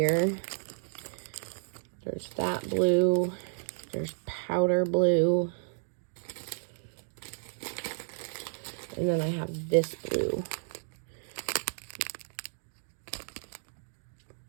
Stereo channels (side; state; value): left; silent; digital silence